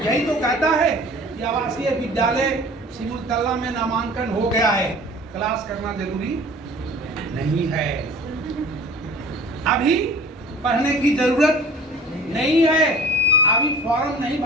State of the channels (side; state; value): both; normal; correlation 0.45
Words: यही तो कहता है कि आवासीय विद्यालय सिमुलतला में नामांकन हो गया है, क्लास करना जरूरी नहीं है। अभी पढ़ने की जरूरत नहीं है, अभी फॉर्म नहीं